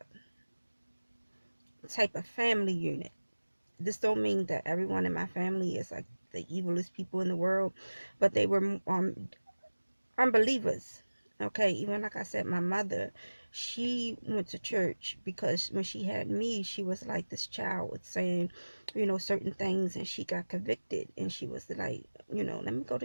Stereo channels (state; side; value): inverted; both; correlation -1.00